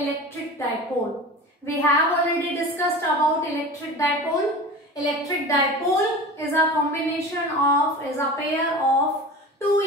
dipole. We have already discussed about electric dipole. Electric dipole is a pair of two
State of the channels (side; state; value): both; normal; correlation 0.34